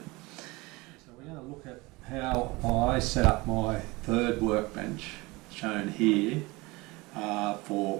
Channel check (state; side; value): quieter; left; 23.3 dB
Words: So we're going to look at how I set up my third workbench, shown here, for